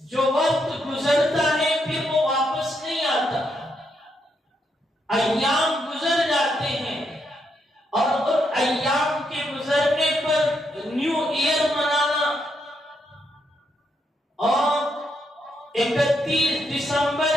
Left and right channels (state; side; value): normal; both; correlation 0.79